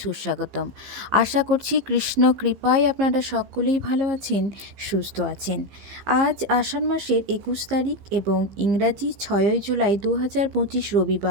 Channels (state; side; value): late; left; 15 ms